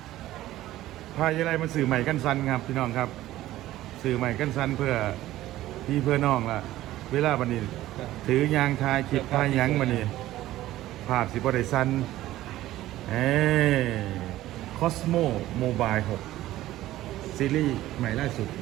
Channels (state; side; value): quieter; left; 15.1 dB